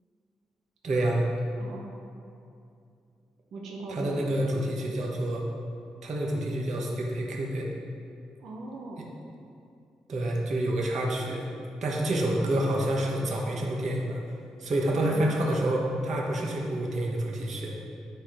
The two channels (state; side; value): normal; both; correlation 0.84